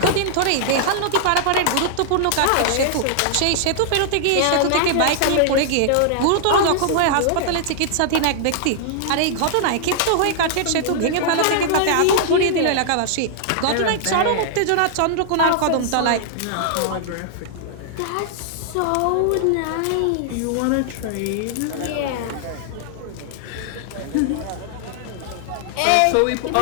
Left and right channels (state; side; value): different; both; correlation -0.01